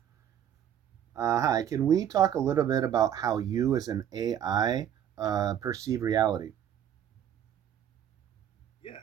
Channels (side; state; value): left; quieter; 9.9 dB